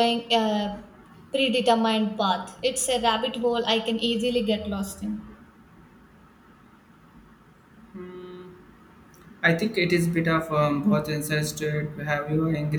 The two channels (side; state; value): both; identical; correlation 1.00